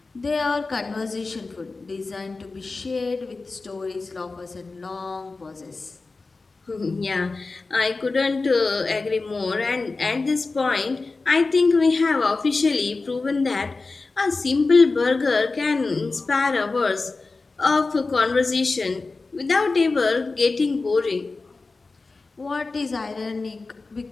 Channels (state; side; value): quieter; right; 3.8 dB